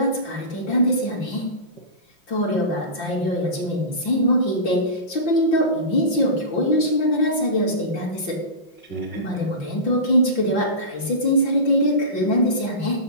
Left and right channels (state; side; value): late; right; 5.8 ms